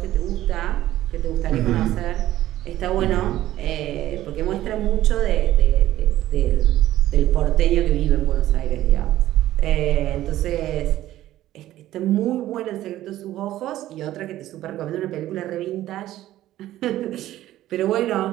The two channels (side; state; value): left; quieter; 14.2 dB